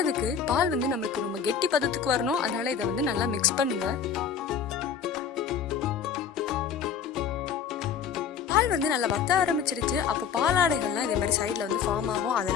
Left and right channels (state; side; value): quieter; right; 7.1 dB